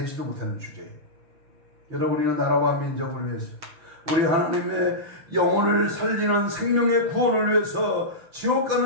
못하는 주제에. 여러분이는 나라와 민족을 위해서 우리 하나님의 영혼을 살리는 생명의 구원을 위해서 지옥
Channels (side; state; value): left; late; 6.4 ms